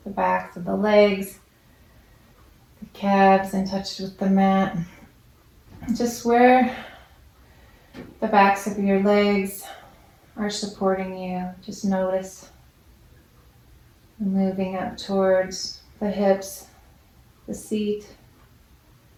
the backs of the legs, the calves in touch with the mat. Just where the backs of your legs are supporting you, just notice. Moving up towards the hips, the seat,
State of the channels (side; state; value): both; identical; correlation 1.00